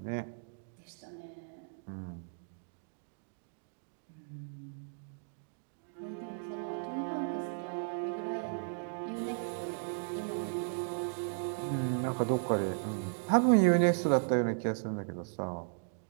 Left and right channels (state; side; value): silent; left; digital silence